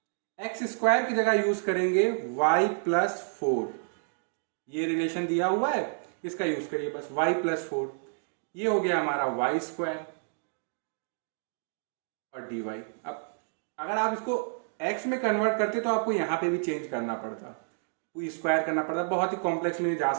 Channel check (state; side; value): silent; left; digital silence